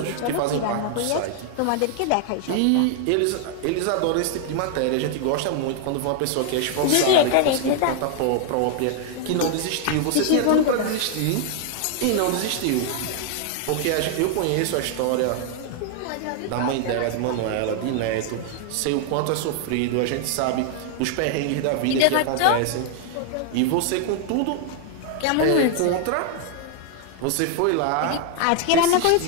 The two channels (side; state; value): both; different; correlation 0.00